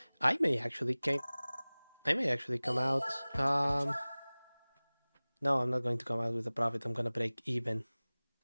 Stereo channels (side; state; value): both; inverted; correlation -1.00